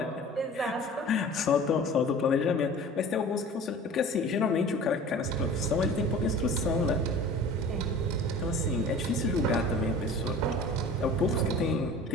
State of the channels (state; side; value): normal; both; correlation 0.41